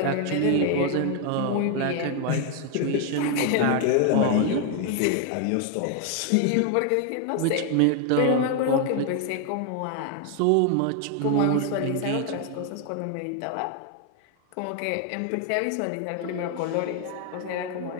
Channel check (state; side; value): different; both; correlation 0.01